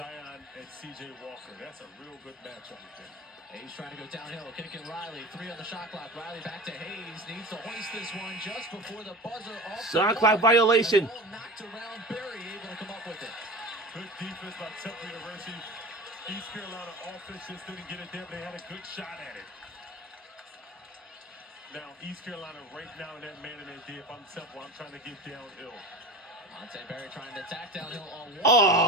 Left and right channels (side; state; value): both; normal; correlation 0.33